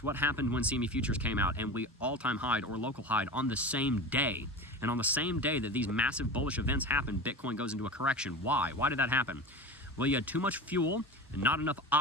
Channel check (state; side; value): normal; both; correlation 0.30